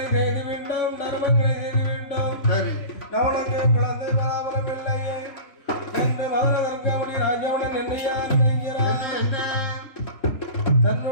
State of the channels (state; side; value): late; right; 3.3 ms